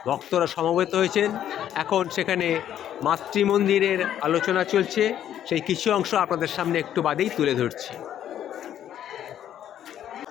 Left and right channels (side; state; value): right; quieter; 10.7 dB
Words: ভক্তরা সমবেত হয়েছেন। এখন সেখানে মাতৃমন্দিরের আলোচনা চলছে। সেই কিছু অংশ আপনাদের সামনে একটু বাদেই তুলে ধরছি।